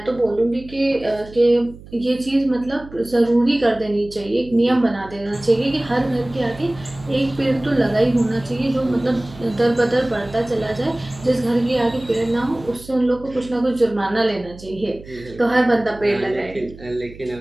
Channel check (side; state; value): right; noise; hum, 18 dB below the sound